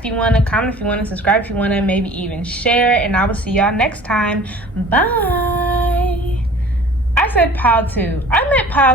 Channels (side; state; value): both; normal; correlation 0.46